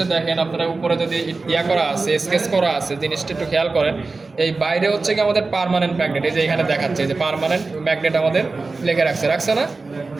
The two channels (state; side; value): quieter; left; 3.8 dB